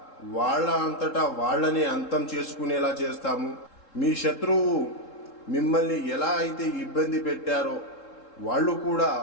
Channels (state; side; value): late; right; 3.7 ms